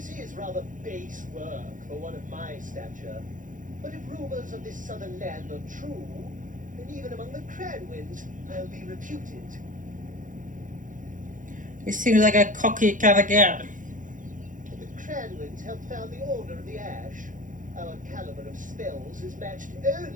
is rather base work for one of my stature, but if rumors of this southern land are true, then even among the Cranwins, I'll be reputed. He seems like a cocky kind of guy. The Cranwins helped found the Order of the Ash. Our caliber of spells is matched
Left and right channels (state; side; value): late; left; 0.38 ms